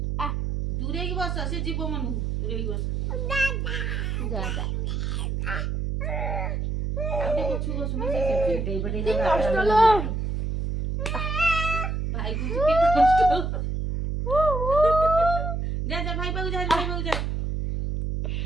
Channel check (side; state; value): right; noise; hum, 1 dB below the sound